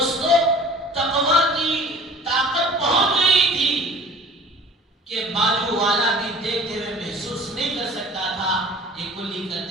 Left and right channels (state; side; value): normal; both; correlation 0.45